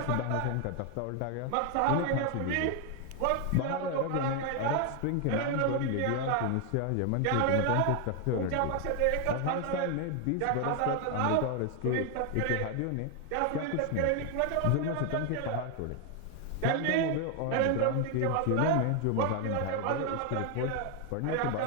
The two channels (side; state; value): both; different; correlation 0.01